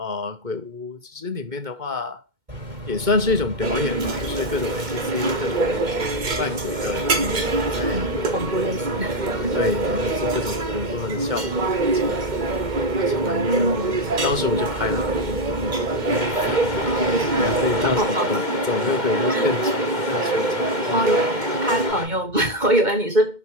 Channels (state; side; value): late; left; 2.2 ms